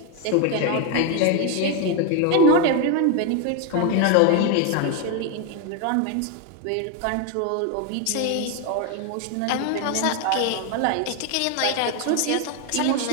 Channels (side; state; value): both; different; correlation 0.01